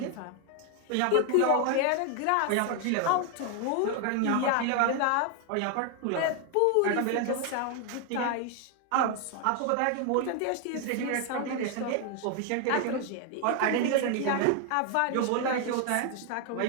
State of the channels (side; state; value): both; different; correlation 0.01